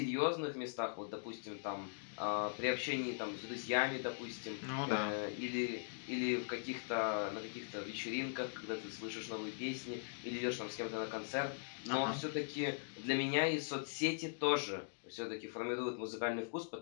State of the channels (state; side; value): silent; right; digital silence